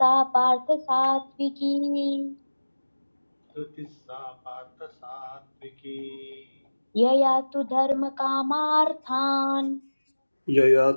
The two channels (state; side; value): inverted; both; correlation -1.00